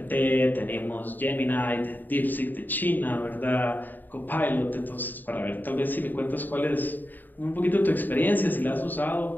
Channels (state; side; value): late; right; 0.089 ms